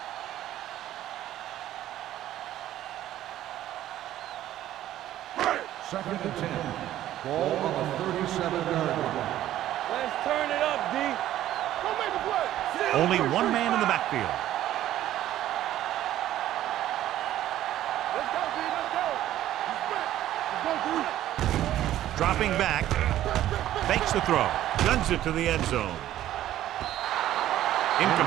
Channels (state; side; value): quieter; left; 13.1 dB